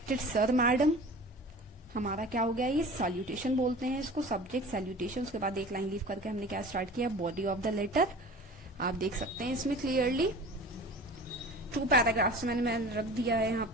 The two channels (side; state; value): both; normal; correlation 0.40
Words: सर मैडम, हमारा क्या हो गया, ये सैल्यूटेशन बोलते हैं इसको, सब्जेक्ट सैल्यूटेशन, उसके बाद एक लाइन लीव करके हमने क्या स्टार्ट किया, बॉडी ऑफ द लेटर, आप देख सकते हैं इसमें क्लियरली 2 पैराग्राफ्स मैंने रख दिया है यहाँ